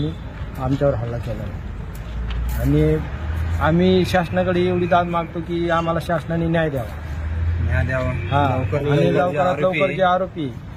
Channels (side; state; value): both; identical; correlation 1.00